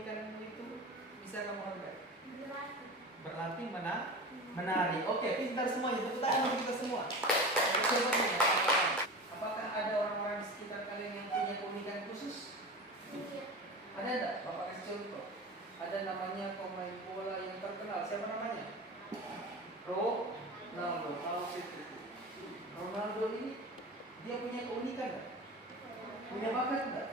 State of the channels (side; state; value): both; normal; correlation 0.30